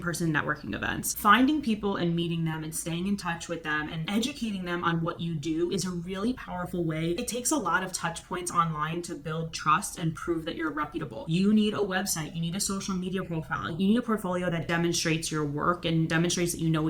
networking events, finding people and meeting them and staying in touch with them and educating them on what you do is a really powerful way. It takes a lot of touch points online to build trust and prove that you're reputable. You need a website, you need a social media profile, you need a portfolio that demonstrates your work and demonstrates that you know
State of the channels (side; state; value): both; identical; correlation 1.00